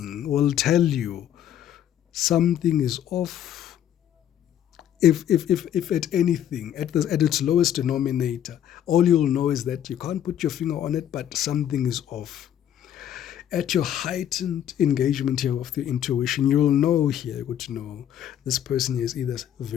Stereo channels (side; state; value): right; quieter; 10.5 dB